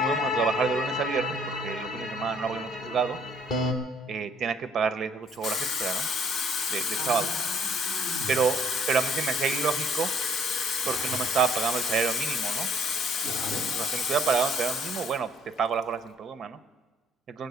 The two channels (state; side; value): normal; both; correlation 0.61